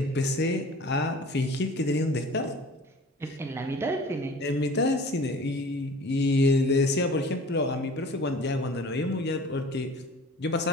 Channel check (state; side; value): normal; both; correlation 0.44